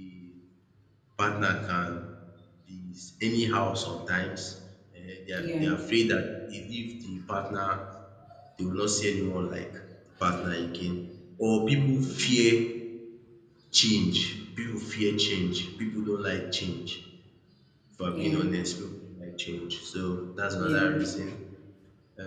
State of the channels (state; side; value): identical; both; correlation 1.00